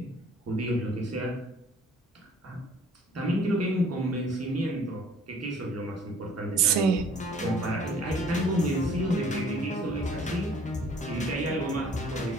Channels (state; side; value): normal; both; correlation 0.55